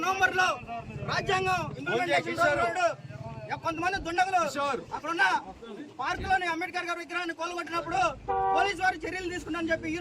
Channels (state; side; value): identical; both; correlation 1.00